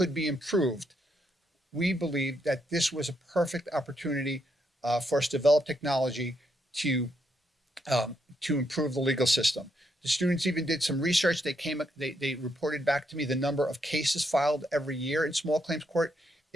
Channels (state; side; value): normal; both; correlation 0.78